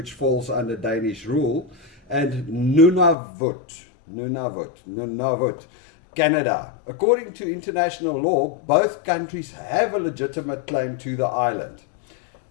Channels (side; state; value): right; drops out; at 3.2 s